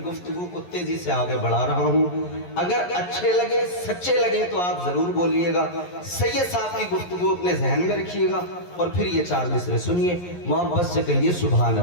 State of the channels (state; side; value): late; right; 11 ms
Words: گفتگو کو تیزی سے آگے بڑھا رہا ہوں. اگر اچھے لگے، سچے لگے تو آپ ضرور بولیے گا. سید صاحب کی گفتگو اپنے ذہن میں رکھیے گا، اور پھر یہ 4 مصرے سنیے، محبت سے کہیے سبحان